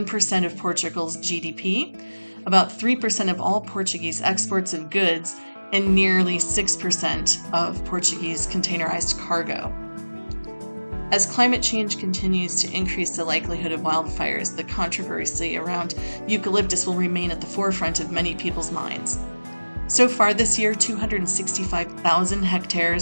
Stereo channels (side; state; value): both; inverted; correlation -1.00